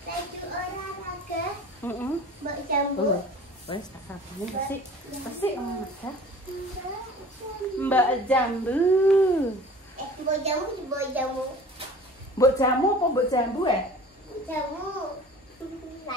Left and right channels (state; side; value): normal; both; correlation 0.44